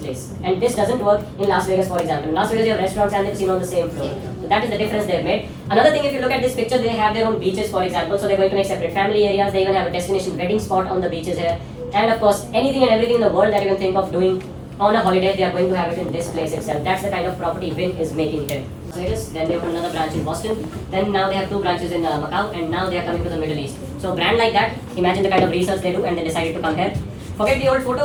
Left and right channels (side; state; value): both; identical; correlation 1.00